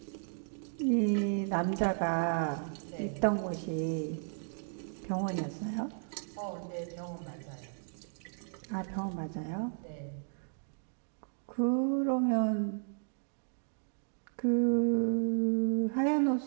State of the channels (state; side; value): silent; left; digital silence